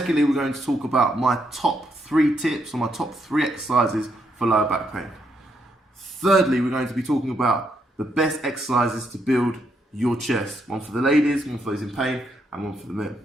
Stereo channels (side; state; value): both; normal; correlation 0.77